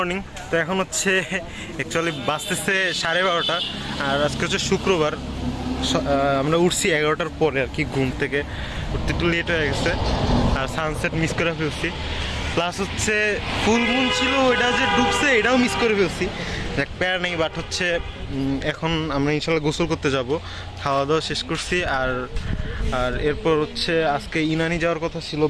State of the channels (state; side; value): identical; both; correlation 1.00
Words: তো এখন হচ্ছে অ্যাকচুয়ালি বাজতেছে 12:30 আর আজকে হচ্ছে শুক্রবার। আমরা উঠছি 11টার পরে আর কি, ঘুম থেকে উঠতে একটু লেট হয়ে গেছে আর সানসেট মিস করে ফেলছি। প্লাস হচ্ছে ফুল মুন ছিল, ওইটা যে ডুবছে এটাও মিস করে ফেলছি। দেখ প্যার নেই, বাট হচ্ছে এখন আমরা ইনশাল্লাহ গোসল করতে যাব। খাওয়া দাওয়া শেষ করছি আর এরপর হচ্ছে আজকে ইনানি যাওয়ার কথা ছিল